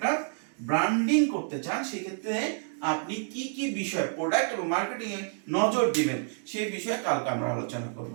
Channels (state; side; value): silent; left; digital silence